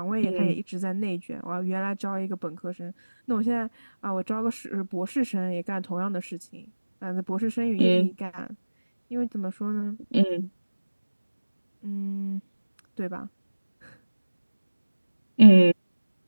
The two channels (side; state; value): both; inverted; correlation -1.00